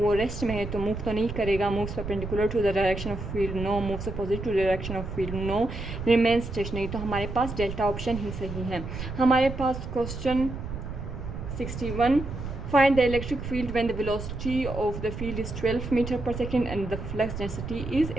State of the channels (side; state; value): right; noise; rumble, 7 dB below the sound